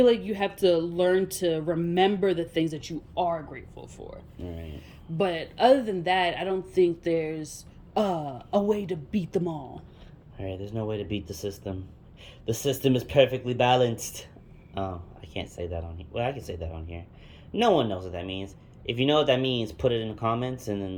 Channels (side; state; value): both; identical; correlation 1.00